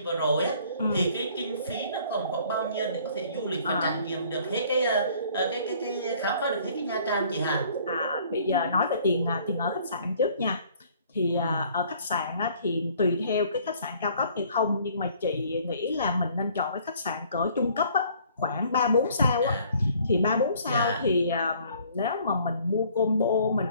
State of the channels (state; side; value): inverted; both; correlation -0.57